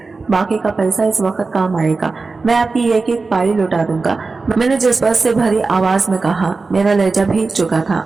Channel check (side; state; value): left; quieter; 4.0 dB